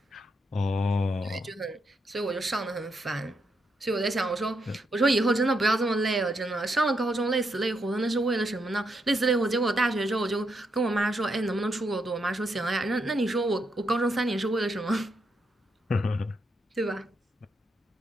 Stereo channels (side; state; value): both; normal; correlation 0.80